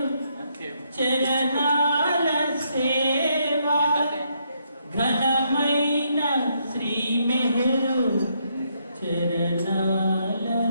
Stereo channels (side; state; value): both; inverted; correlation -0.75